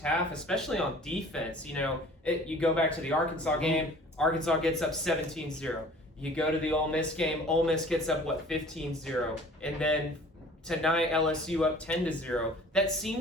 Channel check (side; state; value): both; normal; correlation 0.48